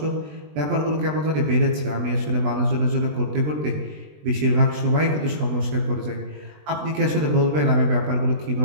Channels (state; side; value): late; left; 20 ms